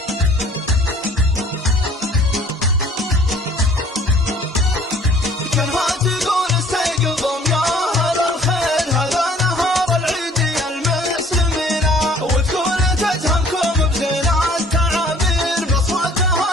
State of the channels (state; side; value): normal; both; correlation 0.55